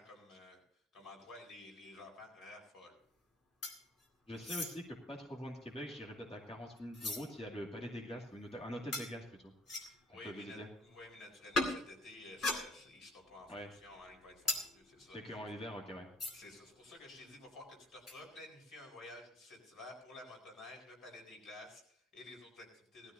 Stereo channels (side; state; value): both; normal; correlation 0.57